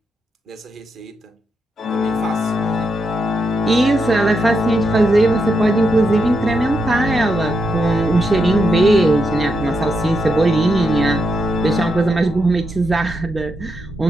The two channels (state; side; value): normal; both; correlation 0.82